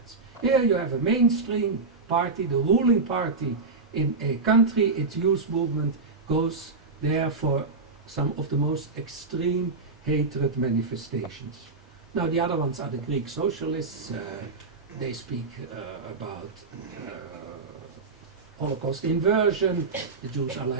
Here you have a mainstream party, the ruling party in a country. Its youth movement goes there for some of the most extreme hatred manifestations. Now the other ones are the Greek socialists. They speak about Holocaust inversion. The Jews are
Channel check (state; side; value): quieter; left; 4.1 dB